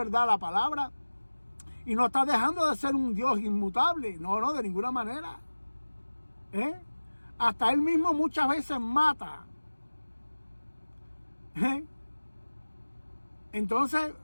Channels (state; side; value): inverted; both; correlation -1.00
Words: la palabra y no está dejando de ser un Dios inmutable, no, de ninguna manera. Hasta Él mismo muchas veces mata. Entonces,